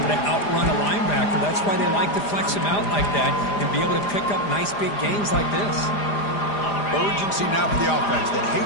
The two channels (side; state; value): right; late; 4.9 ms